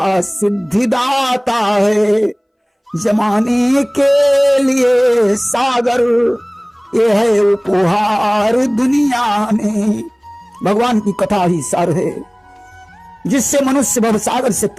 सिद्धिदाता है। जमाने के लिए सागर ये है उपहार दुनिया में। भगवान की कथा ही सार है जिससे मनुष्य भवसागर से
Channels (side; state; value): both; identical; correlation 1.00